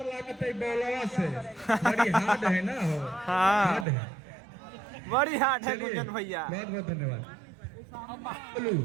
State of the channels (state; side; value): drops out; left; at 3.9 s